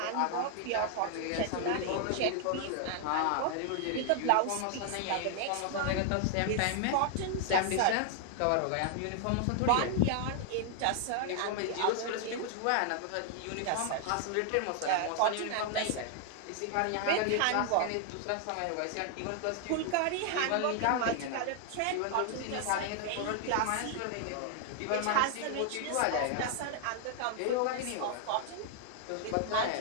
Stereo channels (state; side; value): different; both; correlation 0.00